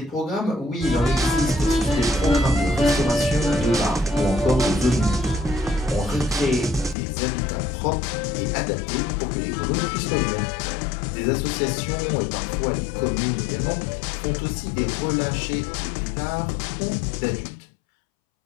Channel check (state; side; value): drops out; right; at 7.0 s